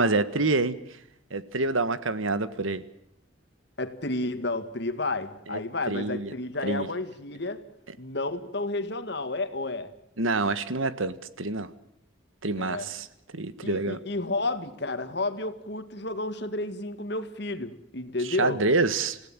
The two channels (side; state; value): both; normal; correlation -0.14